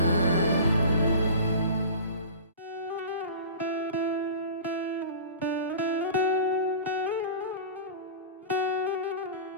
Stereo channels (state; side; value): inverted; both; correlation -0.37